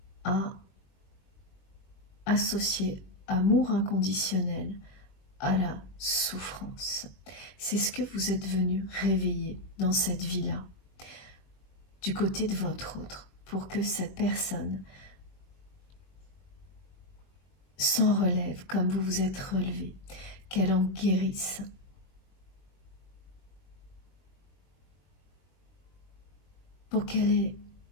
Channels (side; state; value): right; late; 21 ms